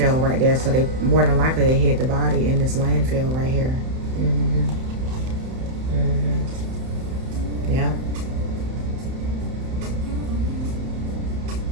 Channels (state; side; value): late; left; 31 ms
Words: right there, so they more than likely they hid the body in this landfill right here. Yeah.